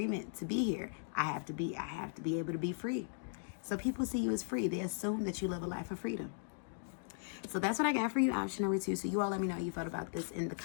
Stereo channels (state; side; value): silent; right; digital silence